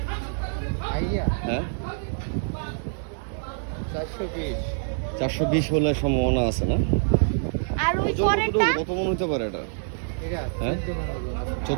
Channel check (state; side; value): silent; left; 61 dB below the other